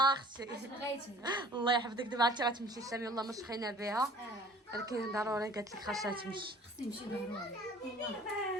اختي بغيتي الله يحفظك. دابا عرفتي غتمشي سامي والله ما شخينا بها ولكن ضروري قالت لك خاصها تمشي. خصني نمشي ضروري هنا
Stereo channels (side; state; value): both; normal; correlation 0.50